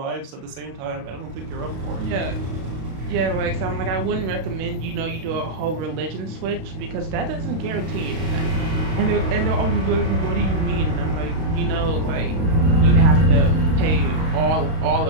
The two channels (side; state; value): left; late; 32 ms